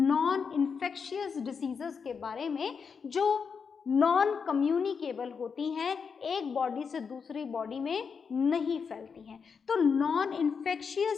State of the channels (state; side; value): quieter; right; 5.9 dB